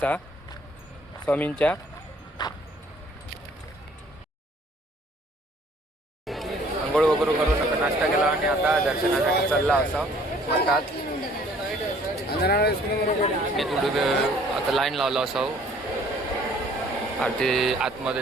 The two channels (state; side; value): normal; both; correlation 0.57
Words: स्वामींच्या. आंघोळ वगैरे करून आता नाश्ता केला आणि आता दर्शनासाठी चालला असा म्हणतात. मी थोडी आता लाईन लावला असाव आरती